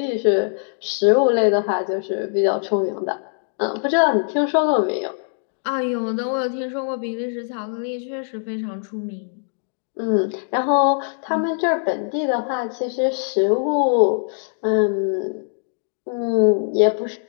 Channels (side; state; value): right; silent; digital silence